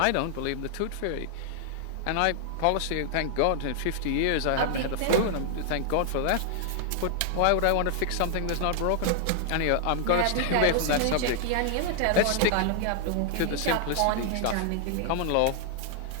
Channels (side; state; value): both; different; correlation 0.00